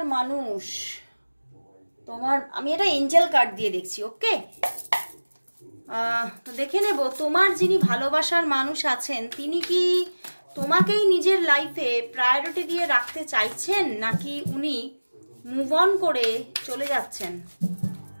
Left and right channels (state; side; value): inverted; both; correlation -1.00